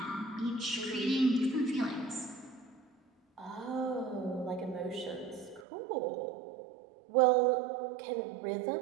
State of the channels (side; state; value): left; drops out; at 5.7 s